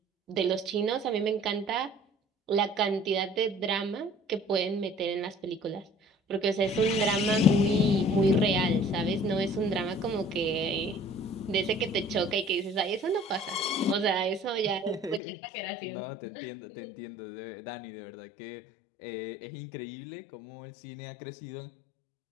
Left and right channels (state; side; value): drops out; right; at 15.2 s